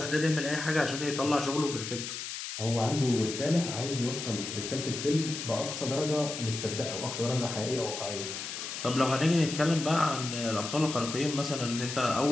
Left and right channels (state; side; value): noise; left; hiss, 6 dB below the sound